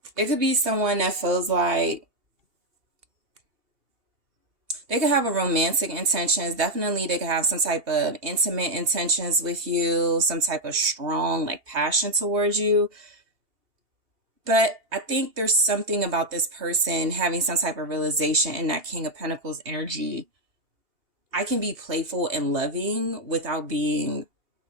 It could be someone that feels like they could have a romantic intentions. Definitely they could have some type of intimate intentions with you, some type of strong like passion towards you. But I think there's something about this person having some type of realization in that King of Pentacles energy. I can be playful and loving without being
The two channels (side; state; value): left; late; 2.8 ms